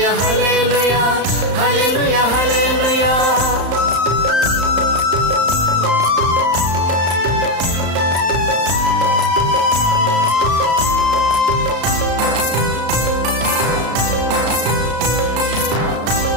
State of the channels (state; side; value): late; left; 35 ms